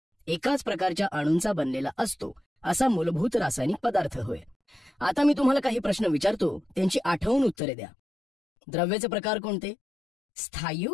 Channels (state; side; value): drops out; right; at 7.6 s